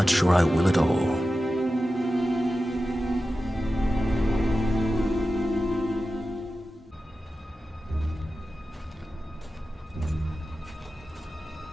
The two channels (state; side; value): normal; both; correlation 0.93